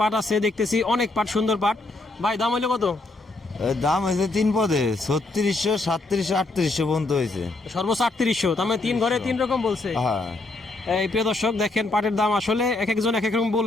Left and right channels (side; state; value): right; quieter; 3.1 dB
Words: পাট আছে, দেখতেছি অনেক পাট, সুন্দর পাট। ভাই, দাম হইলো কত? দাম হয়েছে তিন পদে 3600, 3700, 3800 পর্যন্ত হয়েছে। সর্বোচ্চ 3800, তার মানে তিন ঘরে তিন রকম বলছে। হ্যাঁ, এই প্রিয় দর্শক দেখেন, পাটের দাম আসলে এক একজন এক এক রকম